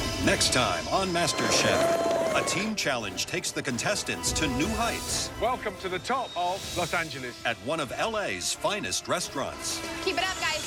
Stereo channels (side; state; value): both; identical; correlation 1.00